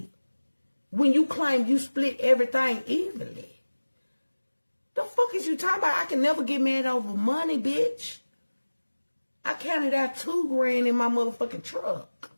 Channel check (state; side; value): inverted; both; correlation -1.00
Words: When you claim you split everything evenly. The fuck is you talking about? I can never get mad over money, bitch. I counted out $2,000 in my motherfucking truck.